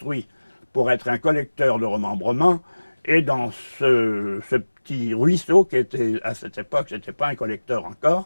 pour être un collecteur de remembrement. Et dans ce petit ruisseau, qui était, à cette époque, ce n'était pas un collecteur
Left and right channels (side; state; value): both; inverted; correlation -1.00